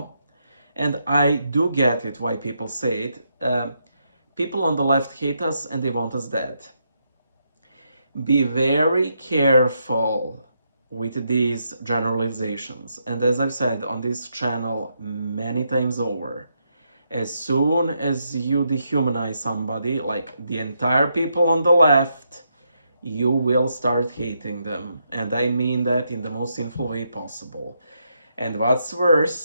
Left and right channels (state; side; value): inverted; both; correlation -0.80